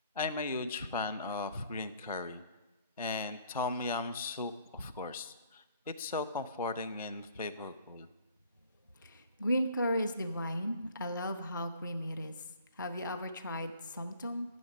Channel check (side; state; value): both; inverted; correlation -0.55